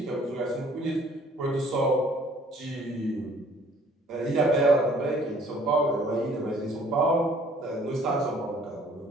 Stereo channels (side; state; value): both; normal; correlation 0.57